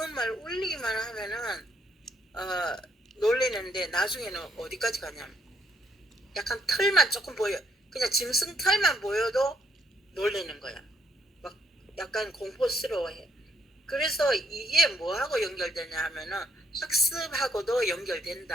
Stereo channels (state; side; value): normal; both; correlation 0.71